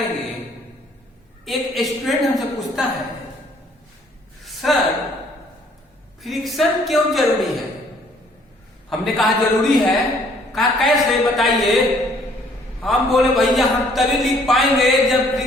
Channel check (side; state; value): both; normal; correlation 0.61